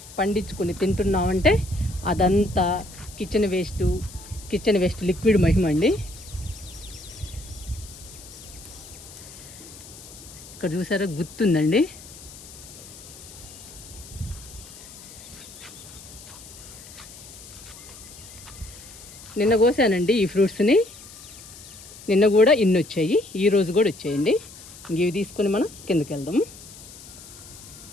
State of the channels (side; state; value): left; noise; hiss, 17 dB below the sound